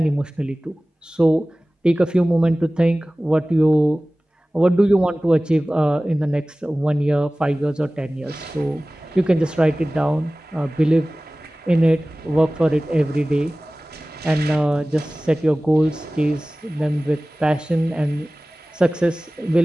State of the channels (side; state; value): both; normal; correlation 0.98